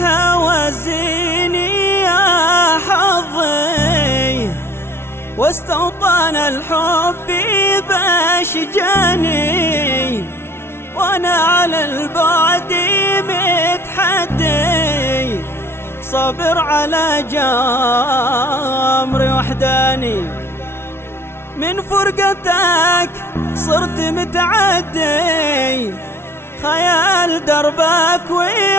يا حظي، واستوطن الحب باشجاني، وانا على البعد متحدي، صابر على جمري وحداني. من فرقتك صرت متعدي، خيال دربك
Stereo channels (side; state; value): right; late; 0.12 ms